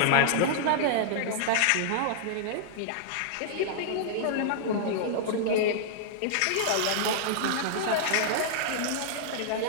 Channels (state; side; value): different; both; correlation -0.01